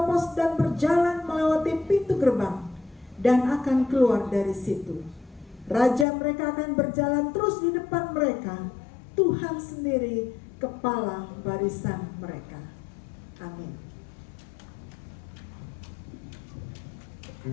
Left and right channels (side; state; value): right; drops out; at 6.1 s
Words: dan berjalan melewati pintu gerbang dan akan keluar dari situ. Raja mereka akan berjalan terus di depan mereka. Tuhan sendiri kepala barisan mereka. Amin.